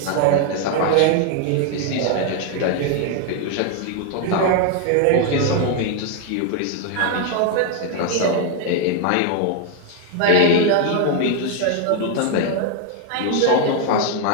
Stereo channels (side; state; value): both; different; correlation 0.00